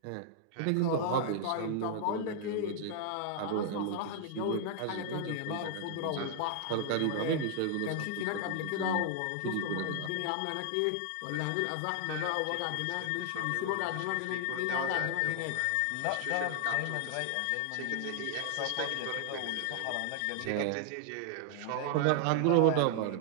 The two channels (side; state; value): both; different; correlation 0.00